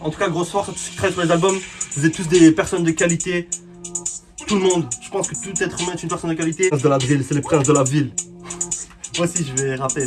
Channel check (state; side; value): identical; both; correlation 1.00